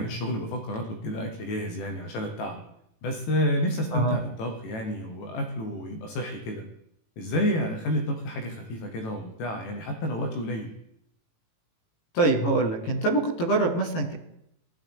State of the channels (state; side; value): late; right; 18 ms